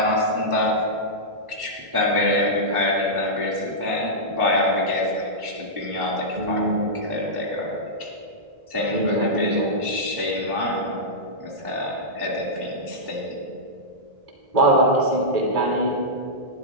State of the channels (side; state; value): left; late; 1.1 ms